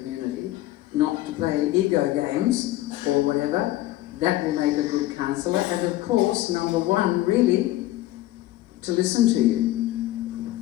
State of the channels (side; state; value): right; quieter; 15.9 dB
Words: not to play ego games or whatever, that will make a good councillor. And of course, number 1, really, to listen to you.